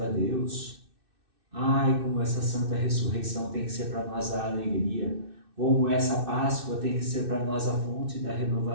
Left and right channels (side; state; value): left; late; 2.6 ms